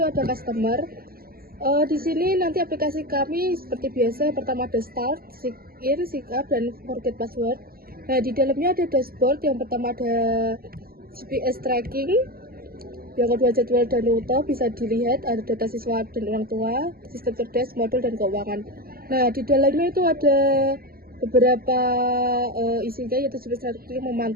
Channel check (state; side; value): late; left; 0.43 ms